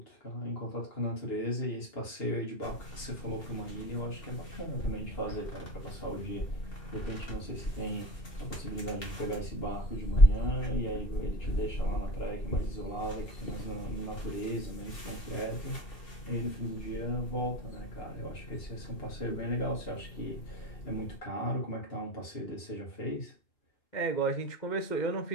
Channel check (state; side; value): late; right; 2.7 ms